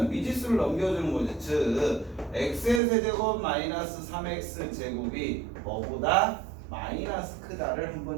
미지수를 넘겨주는 거지. 즉 x의 세제곱 마이너스 3x 제곱이 뭐보다 마이너스 크다를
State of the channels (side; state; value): left; drops out; at 2.8 s